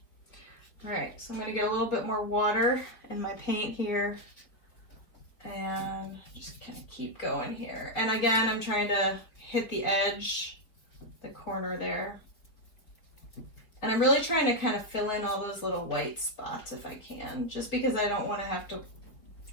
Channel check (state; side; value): late; right; 4.5 ms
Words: All right, so I'm gonna get a little bit more water in my paint here and just kind of keep going here. And again, I'm trying to hit the edge, the corner there. And I'm really trying to kind of fill in all those little white spots if I can, just because I don't want to have to